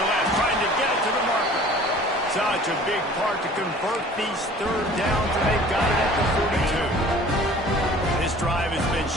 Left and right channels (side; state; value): both; normal; correlation 0.48